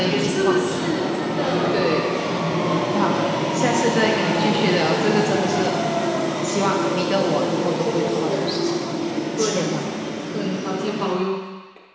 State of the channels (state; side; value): identical; both; correlation 1.00